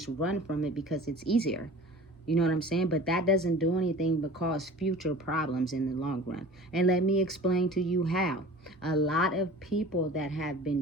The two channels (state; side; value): normal; both; correlation 0.40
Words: run from it because it's easier. You know what I'm saying? But that doesn't do anything but cause future problems in the long run. And let me explain to you how. A lot of people that have